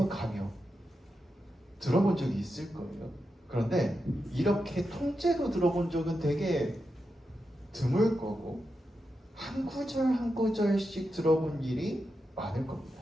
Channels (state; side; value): normal; both; correlation 0.88